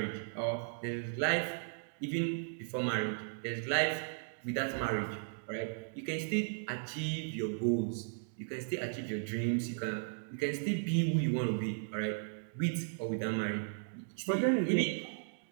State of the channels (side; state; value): left; silent; digital silence